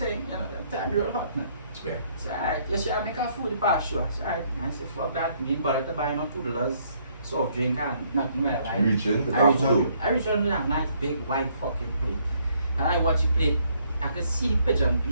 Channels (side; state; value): both; inverted; correlation -0.68